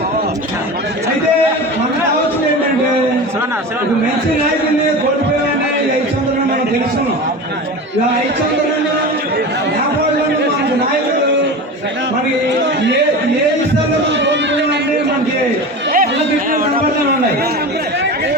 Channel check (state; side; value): normal; both; correlation 0.29